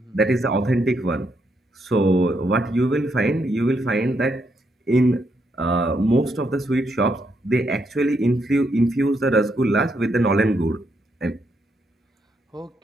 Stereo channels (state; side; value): normal; both; correlation 0.78